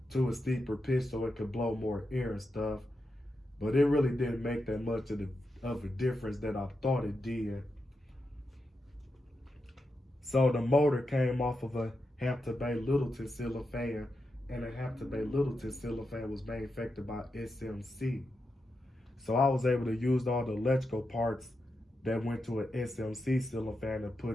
to a steeper pitch so it could blow more air and stuff. But it really didn't make that much of a difference that I thought it did. So the motor came off of a Hampton Bay Littleton ceiling fan, and the Hampton Bay Littleton ceiling fan was manufactured by SMC. So I was able to use all the electrical parts that went to an SMC ceiling fan and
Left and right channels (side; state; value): both; normal; correlation 0.87